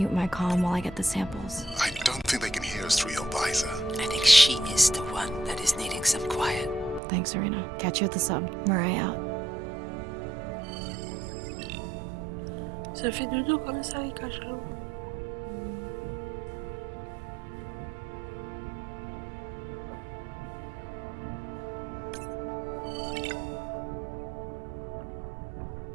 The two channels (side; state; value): left; drops out; at 7.0 s